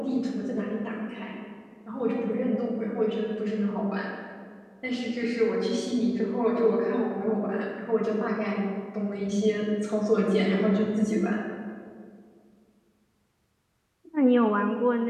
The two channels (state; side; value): identical; both; correlation 1.00